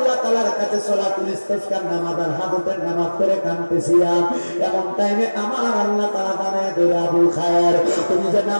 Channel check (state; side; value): inverted; both; correlation -1.00